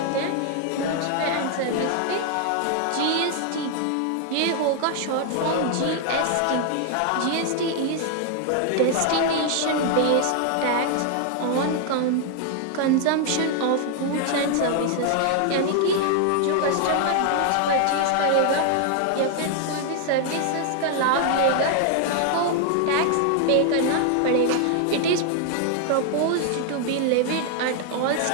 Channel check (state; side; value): different; both; correlation 0.00